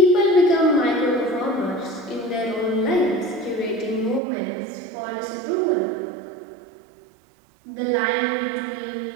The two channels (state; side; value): drops out; left; at 4.2 s